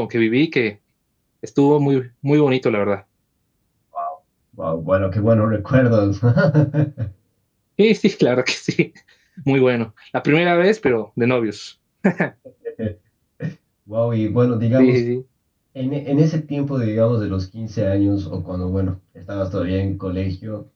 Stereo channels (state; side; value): identical; both; correlation 1.00